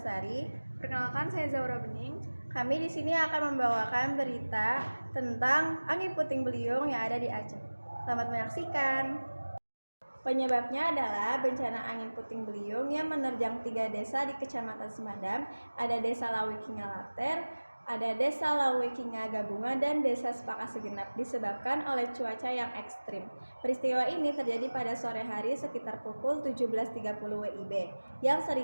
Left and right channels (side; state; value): both; inverted; correlation -1.00